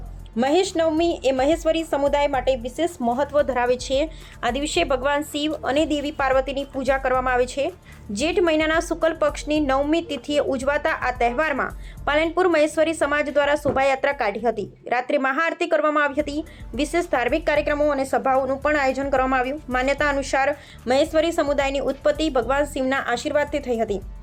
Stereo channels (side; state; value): both; identical; correlation 1.00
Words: મહેશ નવમી એ મહેશ્વરી સમુદાય માટે વિશેષ મહત્વ ધરાવે છે। આ દિવસે ભગવાન શિવ અને દેવી પાર્વતીની પૂજા કરવામાં આવે છે। જેઠ મહિનાના શુક્લ પક્ષની નવમી તિથિએ ઉજવાતા આ તહેવારમાં પાલનપુર મહેશ્વરી સમાજ દ્વારા શોભાયાત્રા કાઢી હતી। રાત્રે મહાઆરતી કરવામાં આવી હતી। વિશેષ ધાર્મિક કાર્યક્રમો અને સભાઓનું પણ આયોજન કરવામાં આવ્યું। માન્યતા અનુસાર મહેશ્વરી સમુદાયની ઉત્પત્તિ ભગવાન શિવના આશીર્વાદથી થઈ હતી।